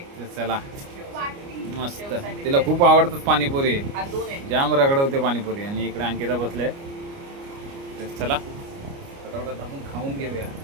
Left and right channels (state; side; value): late; left; 29 ms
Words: चला, मस्त, तिला खूप आवडतात पाणीपुरी, जाम रगडवते पाणीपुरी. आणि इकडे अंकिता बसले. तर चला फटाफट आपण खाऊन घेऊया,